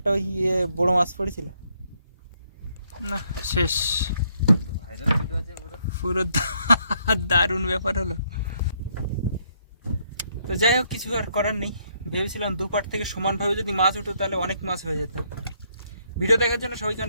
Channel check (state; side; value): inverted; both; correlation -0.71